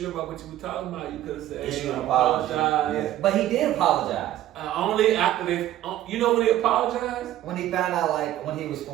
about what you were talking about, you could have said, Issue "Hey, an apologize." Yeah. But he did apologize. Only after they. You know when he apologized? When he found out, when he was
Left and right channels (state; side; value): quieter; left; 13.3 dB